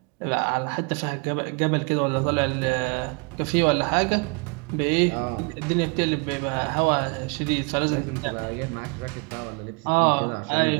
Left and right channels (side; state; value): left; quieter; 33.4 dB